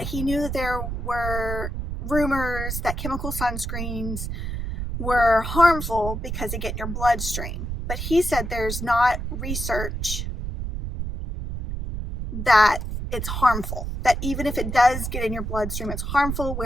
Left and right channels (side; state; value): right; noise; rumble, 4 dB below the sound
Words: he knew that there were rumors that chemical sunscreens were harmful because they get in your bloodstream. But he said there's not research that it's harmful, that even if it does get in your bloodstream, it's harmful.